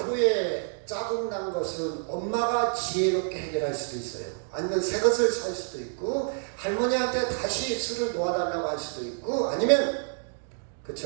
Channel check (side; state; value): left; silent; 59 dB below the other